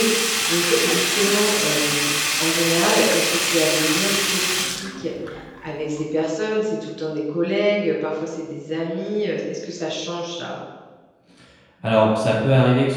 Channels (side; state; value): both; identical; correlation 1.00